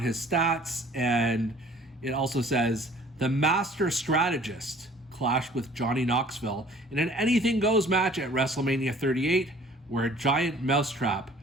his stats, and it also says the master strategist clashed with Johnny Knoxville in an anything goes match at WrestleMania 38, where a giant mousetrap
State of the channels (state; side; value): normal; both; correlation 0.52